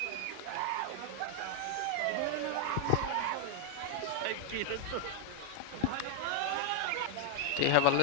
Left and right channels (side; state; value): both; different; correlation 0.00